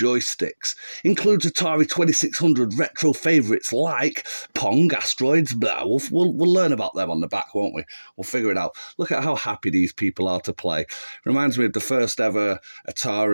Includes Atari 2600 retro favourites like Pong, Asteroids, blah. We'll learn about them on the back, won't we? We'll figure it out. Look at how happy these people are to play. Reminds me of the first ever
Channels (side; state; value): both; inverted; correlation -1.00